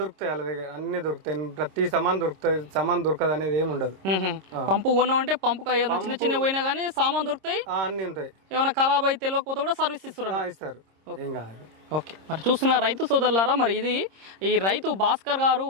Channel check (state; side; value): late; left; 26 ms